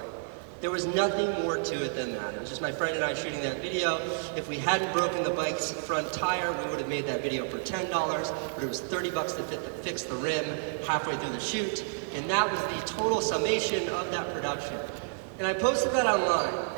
There was nothing more to it than that. It was just my friend and I shooting that video. If we hadn't broken the bike's front tire, we would have made that video for $10, but it was $30 to fix the rim halfway through the shoot. And that was the total summation of that production. And I posted that online,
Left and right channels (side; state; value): left; silent; 58 dB below the other